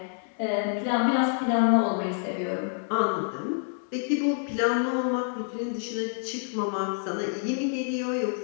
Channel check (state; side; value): silent; right; 60 dB below the other